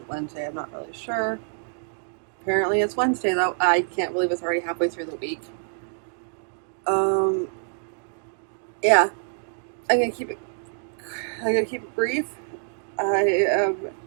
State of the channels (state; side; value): silent; left; 61 dB below the other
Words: Wednesday? I'm not really sure. Apparently it's Wednesday though. I can't believe it's already halfway through the week. Yeah. I'm gonna keep it brief. I am